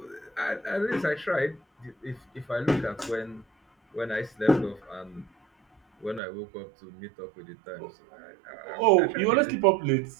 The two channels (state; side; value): drops out; left; at 6.2 s